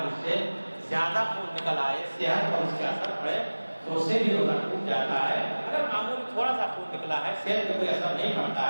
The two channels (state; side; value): inverted; both; correlation -1.00